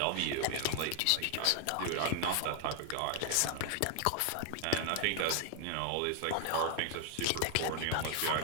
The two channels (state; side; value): different; both; correlation 0.00